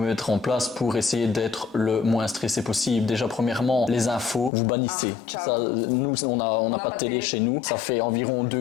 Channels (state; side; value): drops out; right; at 4.5 s